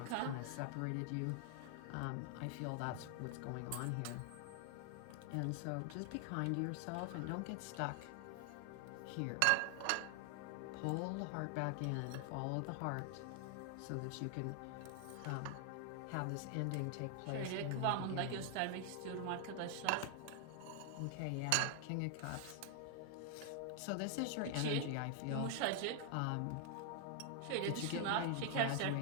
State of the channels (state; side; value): different; both; correlation 0.00